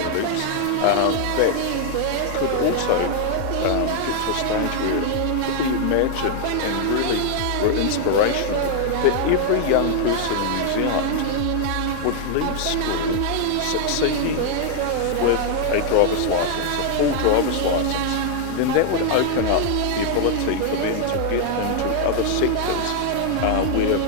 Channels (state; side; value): different; both; correlation 0.00